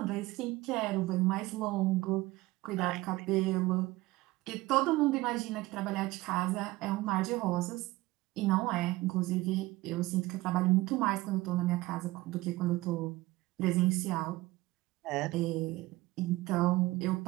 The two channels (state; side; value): quieter; left; 19.3 dB